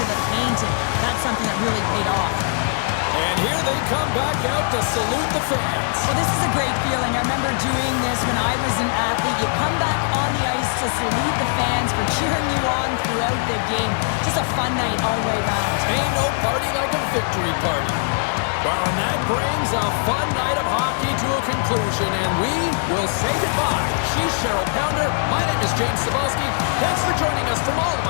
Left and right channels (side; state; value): right; silent; 65 dB below the other